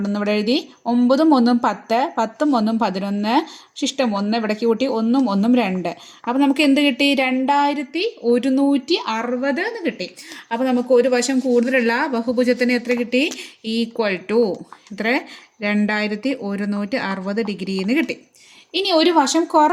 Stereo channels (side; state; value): both; identical; correlation 1.00